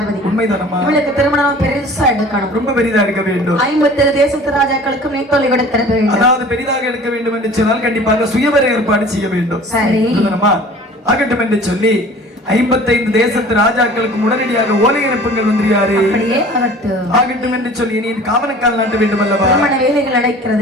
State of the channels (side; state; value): both; normal; correlation 0.45